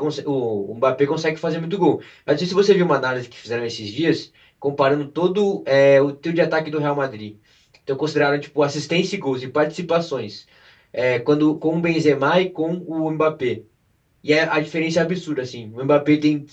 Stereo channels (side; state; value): both; identical; correlation 1.00